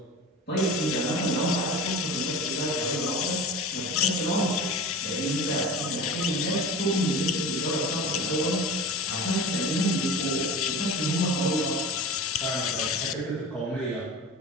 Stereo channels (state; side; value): normal; both; correlation 0.34